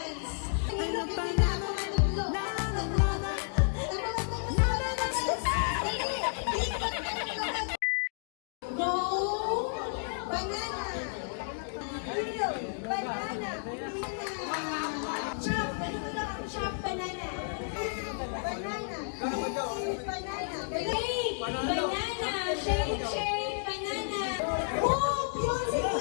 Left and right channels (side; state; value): right; silent; digital silence